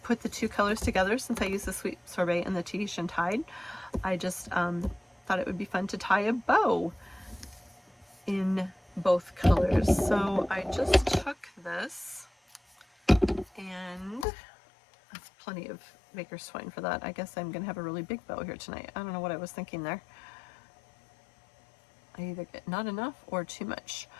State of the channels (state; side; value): drops out; right; at 14.2 s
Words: put the two colors together. Since I used the Sweet Sorbet and the Tahitian Tide, I just thought it would be fun to tie a bow in both colors. So I just took this, and that's plenty of Baker's Twine for that. I guess I'm gonna have a really big bow here tonight. I don't know what I was thinking there. I either get not enough or too much,